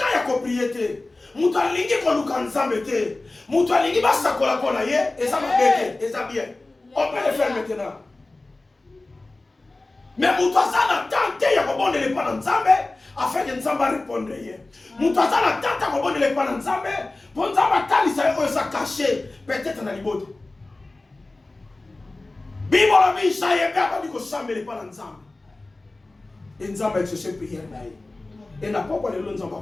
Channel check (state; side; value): quieter; right; 3.0 dB